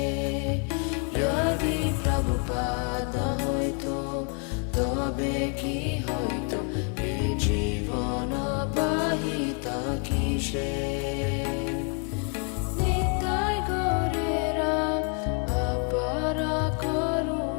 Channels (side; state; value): right; quieter; 39.9 dB